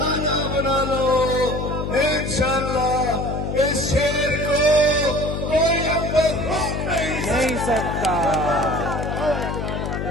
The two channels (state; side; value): noise; left; hum, 3 dB below the sound